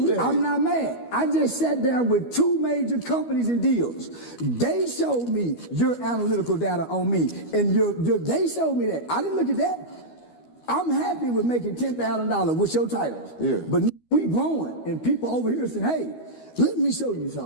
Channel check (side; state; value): right; late; 12 ms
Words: that. I'm not mad. I just sat down with 2 major companies and deals. They showed me your analytical data on me, and they showed me that. I didn't look at that. I'm happy with making $10,000 with your titles. Yeah. But we growing, and people over here saying, hey, let me show you